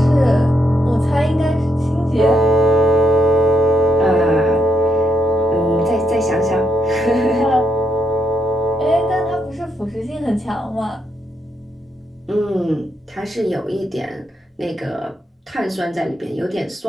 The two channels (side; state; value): both; normal; correlation 0.78